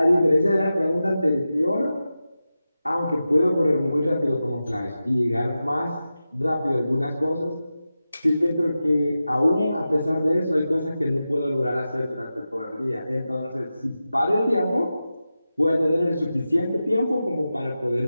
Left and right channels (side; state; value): both; inverted; correlation -0.93